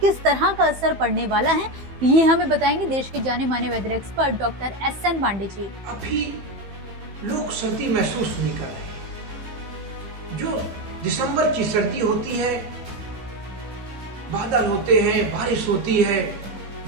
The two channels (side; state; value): left; late; 15 ms